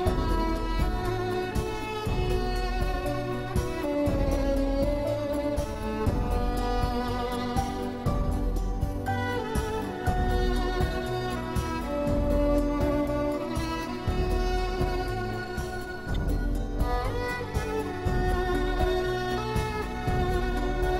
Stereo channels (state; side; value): identical; both; correlation 1.00